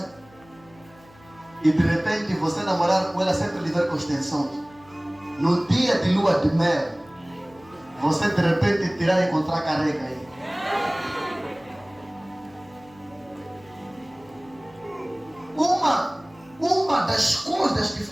e de repente você namorar com ela sempre lhe ver com extensões. No dia de lua de mel, você de repente tirar e encontrar careca aí. Uma das coisas que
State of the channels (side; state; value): left; noise; hum, 26 dB below the sound